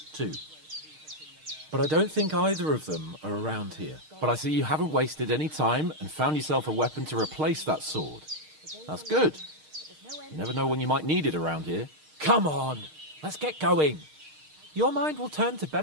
too. But I don't think either of them are around here. But I see you haven't wasted any time and found yourself a weapon to replace that sword. That's good. You never know when you might need it around here. Come on, let's get going. Your mind will turn to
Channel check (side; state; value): left; late; 6.5 ms